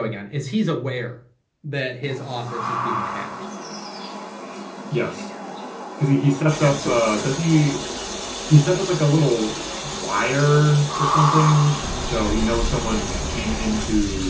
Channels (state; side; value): identical; both; correlation 1.00